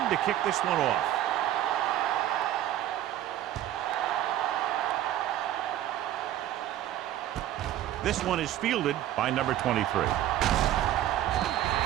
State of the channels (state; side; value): quieter; left; 12.6 dB